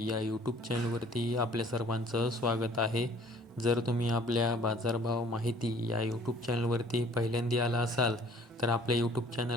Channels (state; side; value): normal; both; correlation 0.54